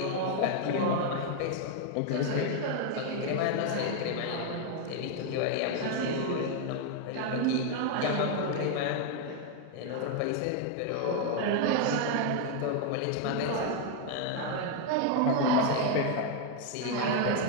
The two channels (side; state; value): both; different; correlation 0.01